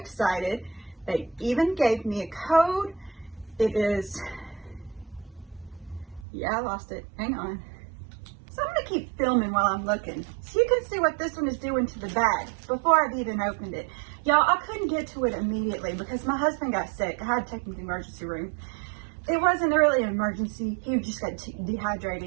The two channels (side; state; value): left; drops out; at 6.2 s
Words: They even gave me a code. It is... Yeah, I lost it. Hang on. So I'm going to keep filming while I'm looking, so you can see what this one is doing to the bag before I've even opened it. Y'all, I couldn't get to it immediately because my husband got sick. I had to take him to the emergency room. It wasn't really an emergency. He just got